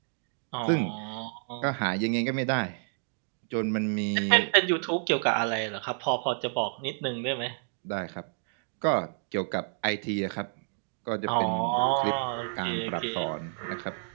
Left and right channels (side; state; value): left; silent; digital silence